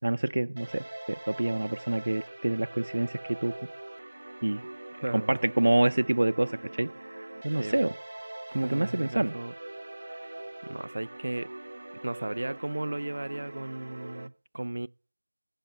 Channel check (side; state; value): both; inverted; correlation -1.00